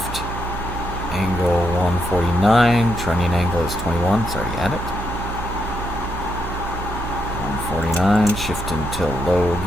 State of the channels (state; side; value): noise; right; hum, 7 dB below the sound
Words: angle 149, trunnion angle is 21, it's already at it. 149, shift into low